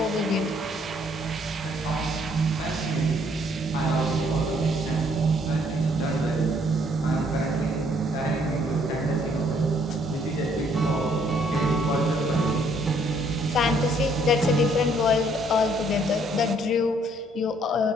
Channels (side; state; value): both; normal; correlation 0.65